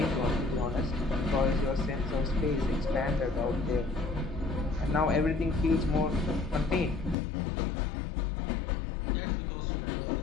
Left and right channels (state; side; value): drops out; right; at 7.2 s